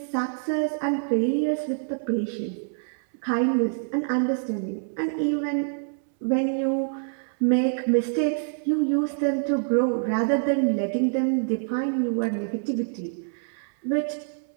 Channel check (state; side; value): silent; left; 61 dB below the other